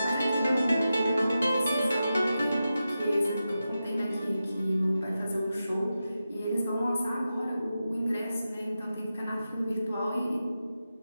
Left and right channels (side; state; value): both; inverted; correlation -0.91